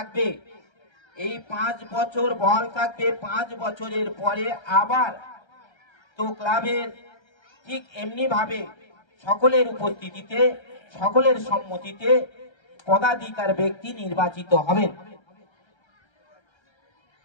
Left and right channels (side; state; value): right; late; 1.3 ms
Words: এই 5 বছর বহাল থাকবে। 5 বছরের পরে আবার তো ক্লাবের ঠিক এমনি ভাবে সকলের উপস্থিতিতে, সকলের সম্মতিতে পদাধিকার ব্যক্তি নির্বাচিত হবেন।